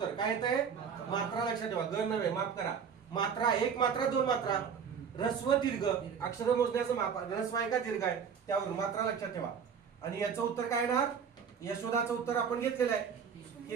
काय येत आहे, मात्रा. लक्षात ठेवा, ग नव्हे, माफ करा. मात्रा, 1 मात्रा 2 मात्रा. ऱ्हस्व दीर्घ, अक्षर मोजण्याचं माप. ऱ्हस्व आहे का दीर्घ आहे त्यावरून मात्रा लक्षात ठेवा. आणि याचं उत्तर काय येणार, यशोदाचं उत्तर आपण घेतलेलं आहे. हे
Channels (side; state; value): left; quieter; 6.9 dB